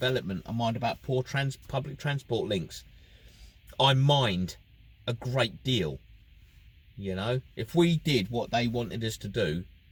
I mind about poor public transport links. I mind a great deal. You know, if we did what they wanted us to do,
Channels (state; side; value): identical; both; correlation 1.00